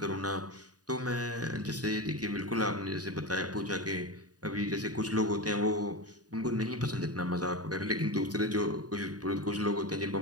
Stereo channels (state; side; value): late; left; 0.68 ms